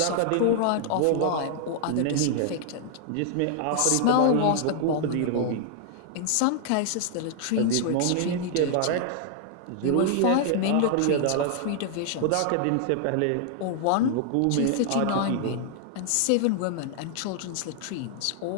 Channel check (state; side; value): different; both; correlation 0.00